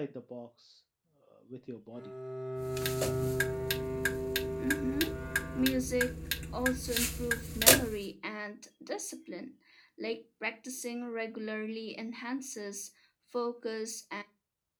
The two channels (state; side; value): identical; both; correlation 1.00